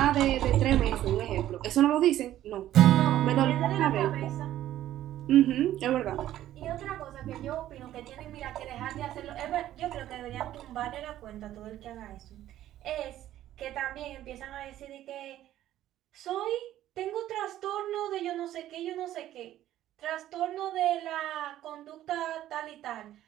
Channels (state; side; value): quieter; left; 13.1 dB